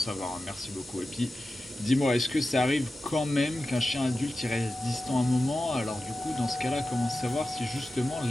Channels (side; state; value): both; normal; correlation 0.93